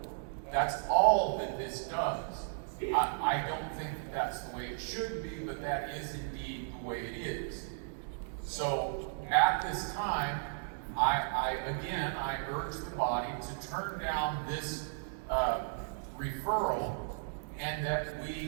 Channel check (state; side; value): silent; left; digital silence